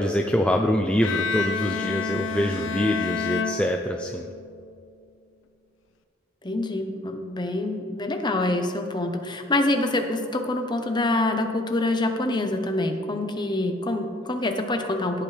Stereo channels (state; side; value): normal; both; correlation 0.65